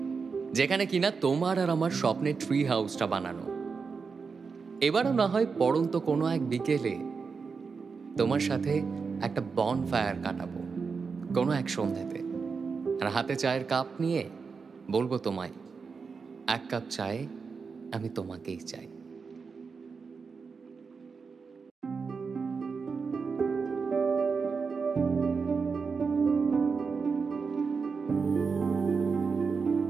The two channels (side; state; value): left; quieter; 5.2 dB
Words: যেখানে কিনা তোমার আর আমার স্বপ্নের ট্রি হাউসটা বানানো। এবারও না হয় পড়ন্ত কোনো এক বিকেলে তোমার সাথে একটা বন ফায়ার কাটাবো কোনো এক সন্ধ্যাতে, আর হাতে চায়ের কাপ নিয়ে বলবো তোমায়, এক কাপ চায়ে আমি তোমাকেই চাই।